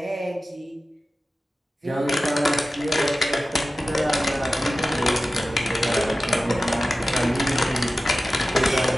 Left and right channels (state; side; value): normal; both; correlation 0.95